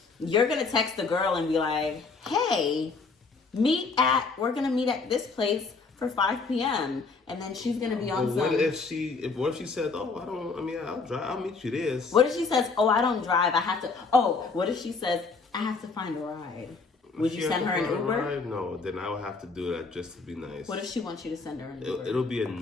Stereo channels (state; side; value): quieter; right; 4.4 dB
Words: you're gonna text the girl and be like, "Hey, we're gonna meet at this place for 5 p.m. and then she's gonna be on. What if she said, "Oh, I'll drive. I'll meet you there." What if she says, "Oh, I don't drive. I have to." Oh, what if she says, "I have to find a ride"? Would you send her an Uber? No, then I would have to do that just to be nice. What if she wants you to send her an Uber? It'll be